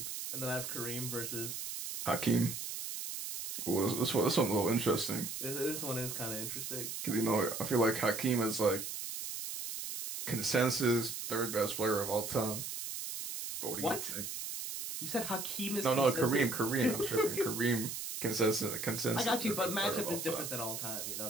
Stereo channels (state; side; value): noise; right; hiss, 6 dB below the sound